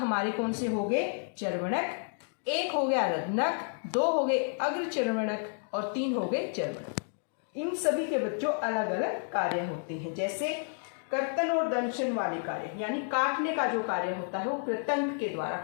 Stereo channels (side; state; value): right; silent; 57 dB below the other